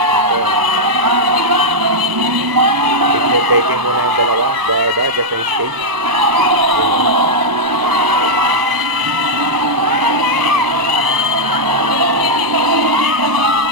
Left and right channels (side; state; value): left; late; 1.0 ms